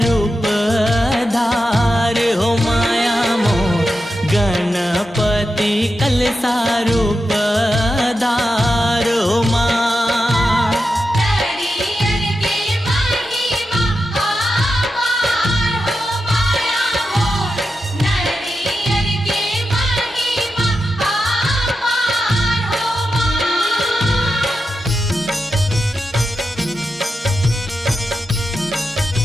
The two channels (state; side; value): normal; both; correlation 0.89